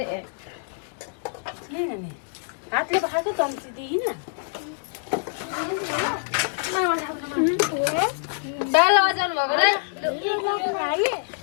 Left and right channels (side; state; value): right; silent; digital silence